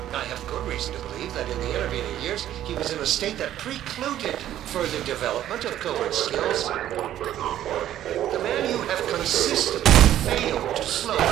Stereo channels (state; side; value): quieter; left; 12.1 dB